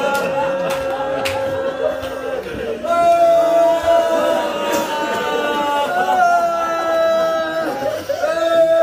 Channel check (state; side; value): identical; both; correlation 1.00